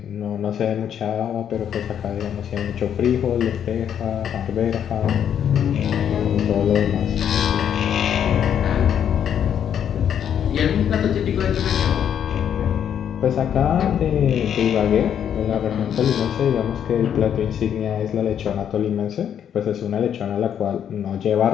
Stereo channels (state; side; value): quieter; right; 9.0 dB